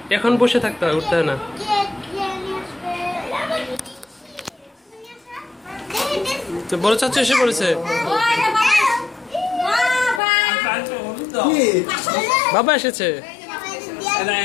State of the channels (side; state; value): right; drops out; at 10.2 s